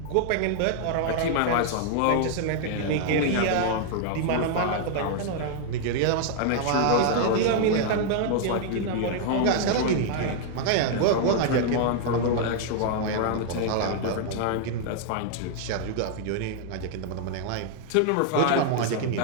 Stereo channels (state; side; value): different; both; correlation 0.00